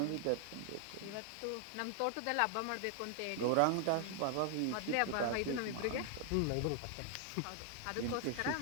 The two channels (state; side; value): different; both; correlation 0.00